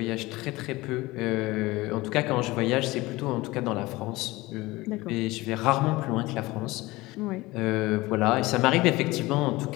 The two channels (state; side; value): quieter; right; 20.4 dB